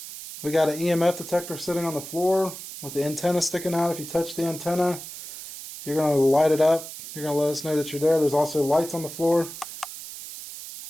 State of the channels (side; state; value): right; noise; hiss, 11 dB below the sound